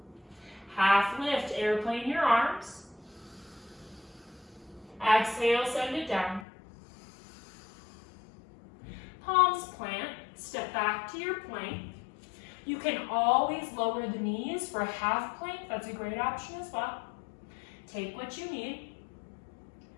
Half lift, airplane your arms. Exhale, send it down. Palms plant, step back to your plank. You can always lower the knees for a half plank. That's a great option as well. Take what you need.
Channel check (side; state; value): right; drops out; at 6.5 s